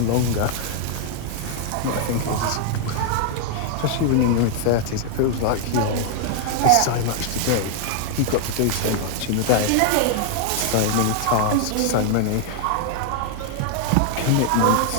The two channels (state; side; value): different; both; correlation 0.00